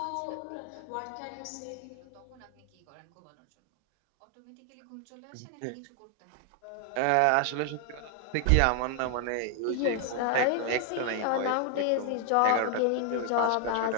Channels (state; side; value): different; both; correlation 0.00